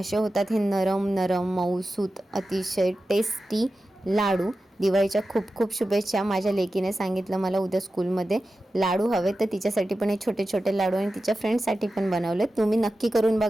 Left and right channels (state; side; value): normal; both; correlation 0.93